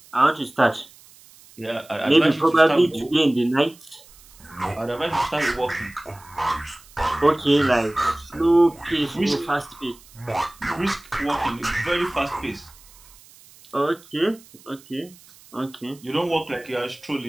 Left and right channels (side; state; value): right; noise; hiss, 24 dB below the sound